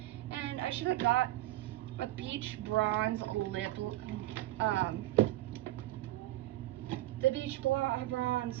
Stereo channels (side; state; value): left; quieter; 16.0 dB